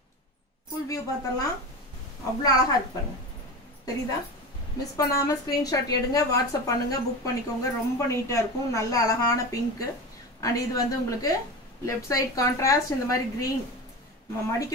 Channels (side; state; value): both; normal; correlation 0.27